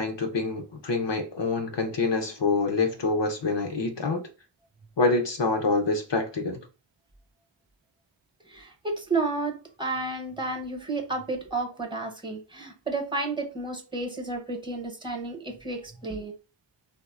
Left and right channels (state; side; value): normal; both; correlation -0.10